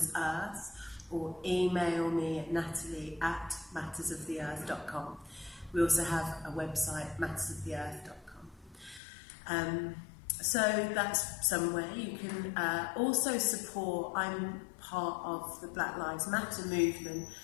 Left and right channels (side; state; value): right; drops out; at 9.0 s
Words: or email me at natalie@mattersoftheearth.com. We also have a website, mattersoftheearth.com. So that's somewhere you can also support. I'm part of the Black Lives Matter movement,